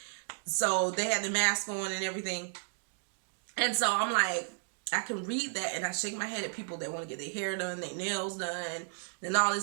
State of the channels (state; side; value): silent; left; digital silence